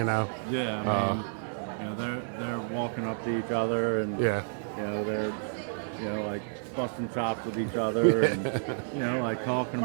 I mean, they're walking up to each other, and they're like busting chops with each other, and like talking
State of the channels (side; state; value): left; silent; digital silence